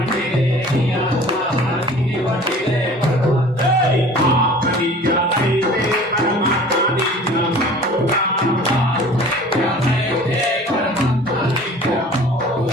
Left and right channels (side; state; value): both; normal; correlation 0.46